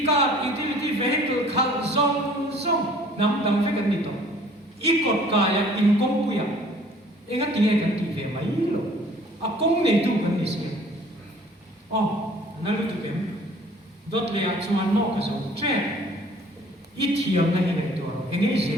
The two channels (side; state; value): both; normal; correlation 0.53